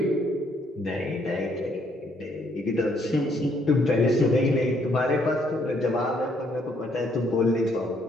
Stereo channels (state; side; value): normal; both; correlation 0.69